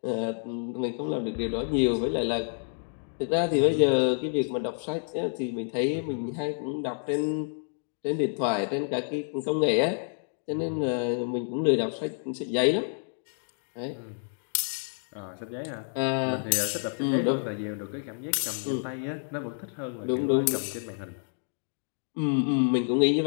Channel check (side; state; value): right; silent; digital silence